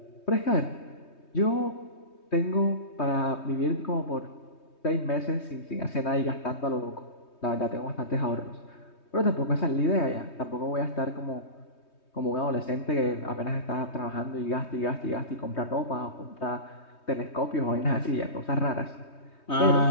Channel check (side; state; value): right; late; 3.2 ms